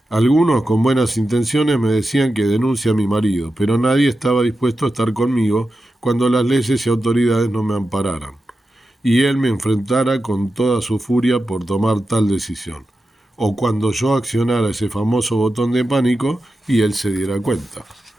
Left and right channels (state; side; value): normal; both; correlation 0.91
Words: Algunos con buenas intenciones me decían que denuncie a mi marido, pero nadie estaba dispuesto a estar conmigo cuando las leyes y autoridades no me ampararan, y él me enfrentara con toda su furia por tomar tal decisión, o cuando yo accionara ese famoso botón de pánico y él se diera cuenta.